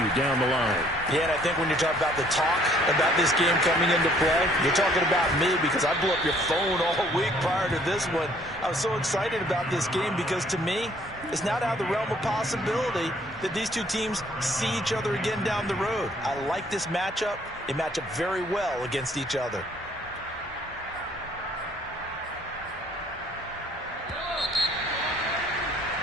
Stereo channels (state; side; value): normal; both; correlation 0.61